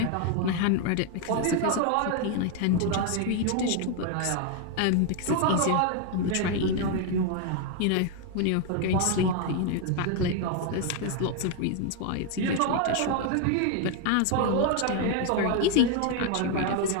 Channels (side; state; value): both; different; correlation 0.01